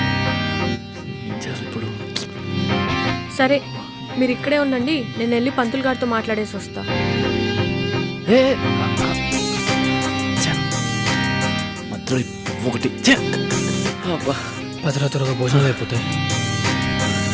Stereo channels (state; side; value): identical; both; correlation 1.00